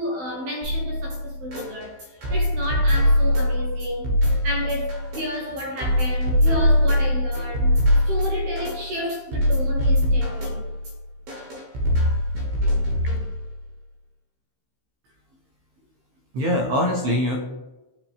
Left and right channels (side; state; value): left; late; 15 ms